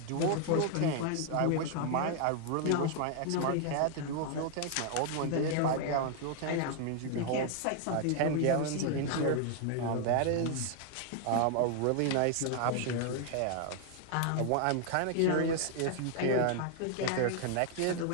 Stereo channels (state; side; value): different; both; correlation 0.00